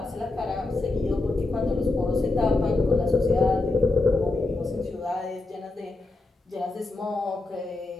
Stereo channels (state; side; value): quieter; right; 3.2 dB